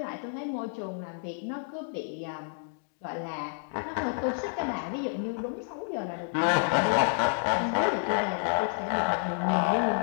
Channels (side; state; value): right; silent; digital silence